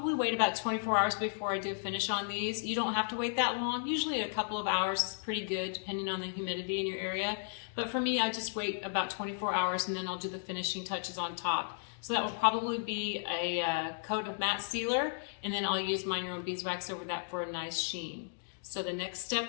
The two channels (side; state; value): right; silent; digital silence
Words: wait about 24 hours before I do a finish on these. You don't have to wait that long. Usually a couple of hours is pretty good depending on the humidity in your area. But for me, I just wait about 24 hours and then I'll do the finishing touches on top. So that will probably be a coat of matte sealer, and then I'll use Mind Your Own Beeswax over that for a nice sheen. So the next